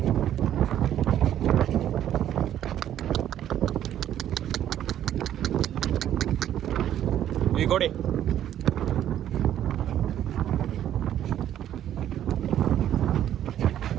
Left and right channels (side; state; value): left; quieter; 11.1 dB